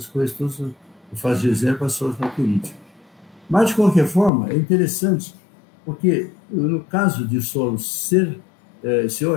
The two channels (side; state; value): right; drops out; at 4.3 s